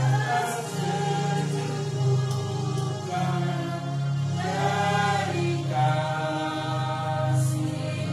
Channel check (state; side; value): identical; both; correlation 1.00